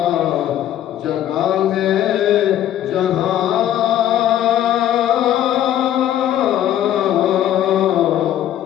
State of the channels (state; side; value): quieter; right; 11.7 dB